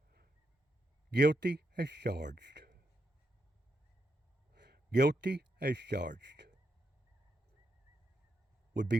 Guilty as charged. Guilty as charged would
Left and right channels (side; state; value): both; normal; correlation 0.82